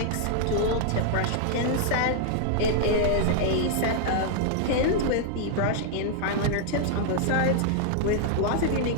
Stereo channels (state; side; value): different; both; correlation -0.01